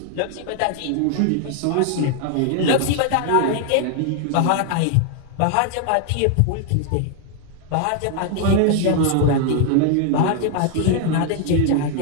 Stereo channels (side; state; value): both; different; correlation 0.00